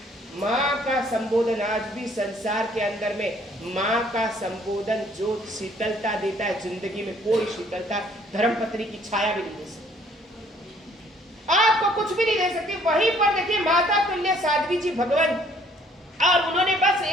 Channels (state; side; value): normal; both; correlation 0.61